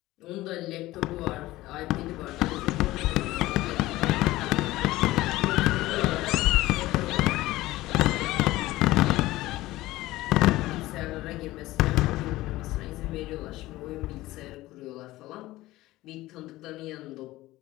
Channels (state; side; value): quieter; right; 17.5 dB